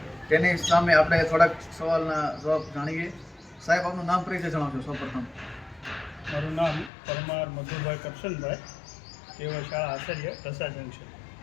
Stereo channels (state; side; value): drops out; right; at 6.9 s